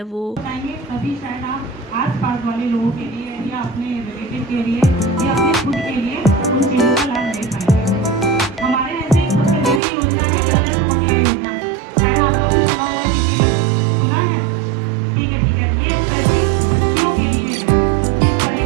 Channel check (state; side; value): drops out; left; at 9.8 s